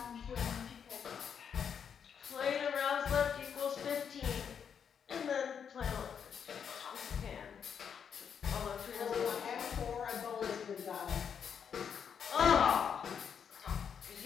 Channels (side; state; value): right; quieter; 7.4 dB